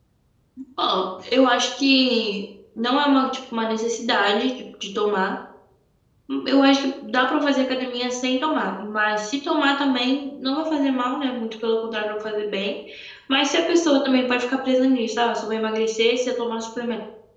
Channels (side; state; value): both; identical; correlation 1.00